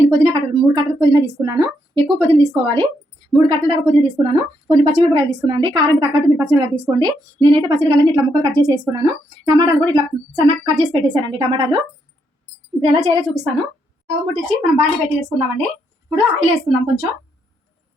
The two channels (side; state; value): both; normal; correlation 0.77